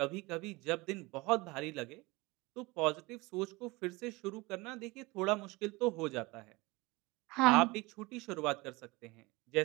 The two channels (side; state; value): left; quieter; 23.3 dB